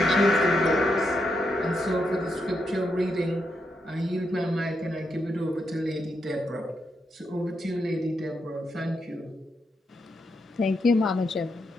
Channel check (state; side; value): normal; both; correlation 0.82